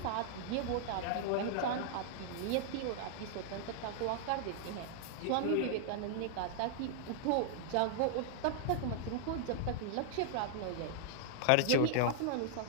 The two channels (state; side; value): different; both; correlation -0.01